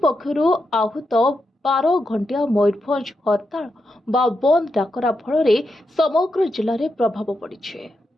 पक्षर आहूत 12 घंटिया मयूरभंज हड़ताल बा बंद डाकरा फल समग्र जिले में प्रभाव पड़ी।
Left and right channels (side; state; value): both; normal; correlation 0.85